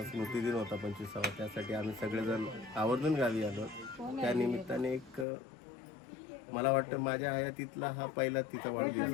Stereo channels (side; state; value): right; drops out; at 5.2 s